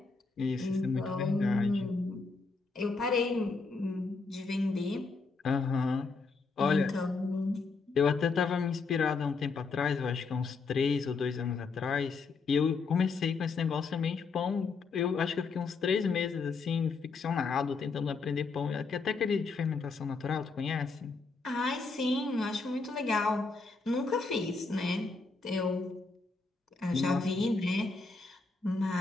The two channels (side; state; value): right; quieter; 4.3 dB